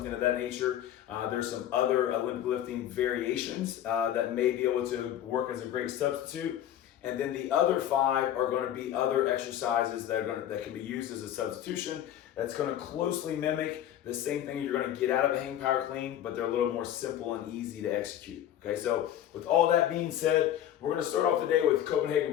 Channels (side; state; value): right; quieter; 11.3 dB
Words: of that nature, there's some other Olympic lifting variations that may be able to work as a great substitute. And then the other 5 are going to be other exercises that can be used as a substitution. That's going to closely mimic the same thing you're going to get out of a hang power clean, but they're a little more simple and easy to execute. Okay, so with all that being said, we're going to start off the day with